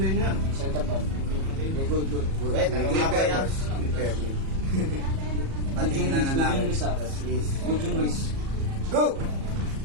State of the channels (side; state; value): left; late; 37 ms